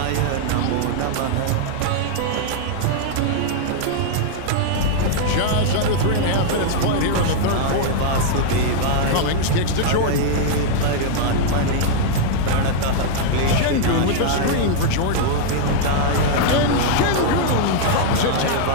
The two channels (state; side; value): different; both; correlation -0.01